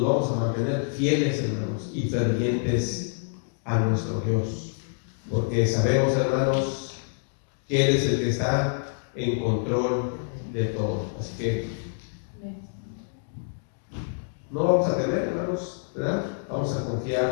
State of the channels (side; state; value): right; silent; digital silence